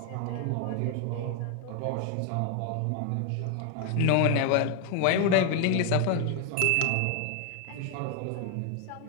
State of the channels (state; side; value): different; both; correlation 0.01